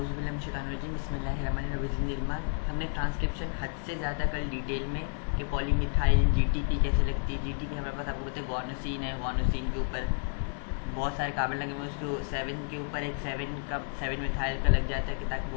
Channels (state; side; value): silent; right; 57 dB below the other